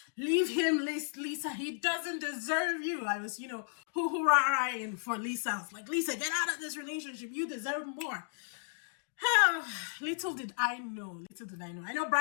Leave him, Lisa. He doesn't deserve you. I was, hoo-hoo-rah-rahing for Lisa. I was like, Lisa, get out of this relationship. You deserve more. Little did I know. I know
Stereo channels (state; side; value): silent; right; digital silence